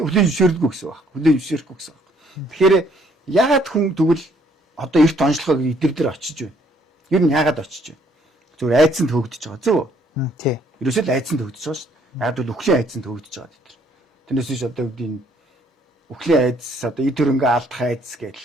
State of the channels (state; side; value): normal; both; correlation 0.65